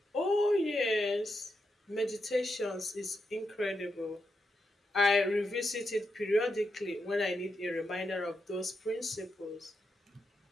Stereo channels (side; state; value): both; normal; correlation 0.84